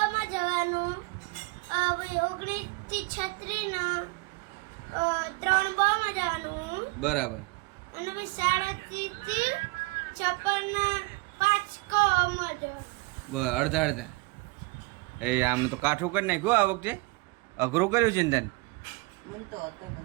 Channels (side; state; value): left; quieter; 25.4 dB